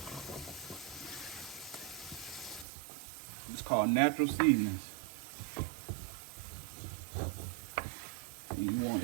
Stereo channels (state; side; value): drops out; left; at 2.7 s